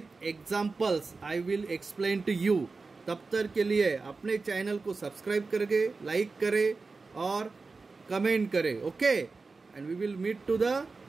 examples I will explain to you. तब तक के लिए अपने चैनल को सब्सक्राइब करके लाइक करें और कमेंट करें, okay. And we will meet to the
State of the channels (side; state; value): left; quieter; 4.1 dB